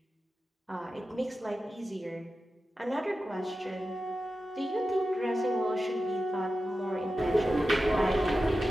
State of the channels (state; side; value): normal; both; correlation 0.92